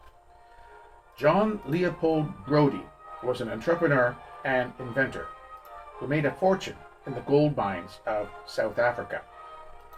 John Leopold Brodie was an entrepreneur and inventor who made a fortune in the gold mines of South Africa,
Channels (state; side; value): identical; both; correlation 1.00